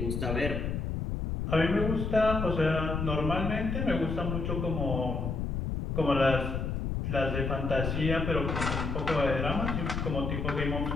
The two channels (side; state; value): left; noise; rumble, 2 dB below the sound